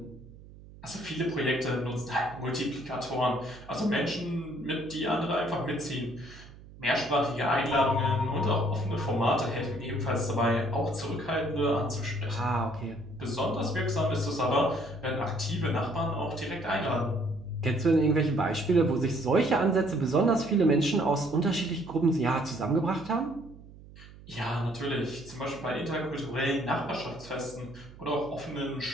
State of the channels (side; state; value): right; noise; hum, 19 dB below the sound